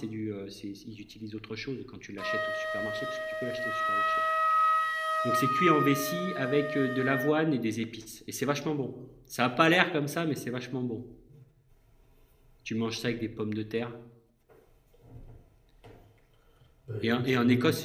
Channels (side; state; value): both; identical; correlation 1.00